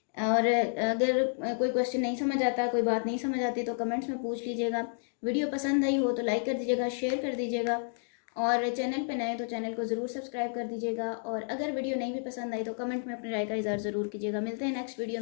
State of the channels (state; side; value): silent; right; digital silence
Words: और अगर कोई क्वेश्चन नहीं समझ आता, कोई बात नहीं समझ आती तो कमेंट्स में पूछ लीजिएगा। वीडियो पसंद आई हो तो लाइक कर दीजिएगा, शेयर कर दीजिएगा, और चैनल पे नए तो चैनल को ज़रूर सब्सक्राइब कर दीजिएगा। और अगर वीडियो नहीं भी पसंद आई तो कमेंट में अपनी राय का इज़हार ज़रूर कीजिएगा। मिलते हैं नेक्स्ट वीडियो